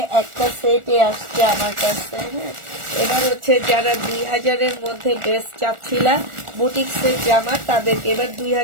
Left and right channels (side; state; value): left; late; 1.4 ms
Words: একটা সেটে আসছে আমার কাছে। হ্যাঁ, এবার হচ্ছে যারা 2000-এর মধ্যে ড্রেস চাচ্ছিলা বুটিক্সের জামা, তাদেরকে এবার